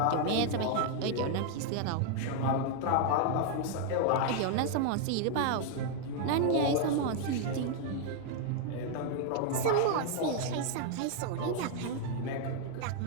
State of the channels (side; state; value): both; different; correlation 0.00